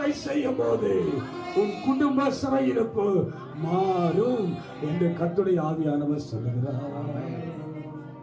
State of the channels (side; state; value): both; identical; correlation 1.00